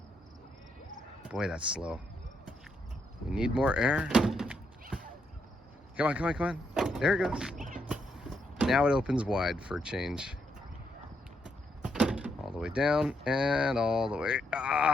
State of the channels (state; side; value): normal; both; correlation 0.79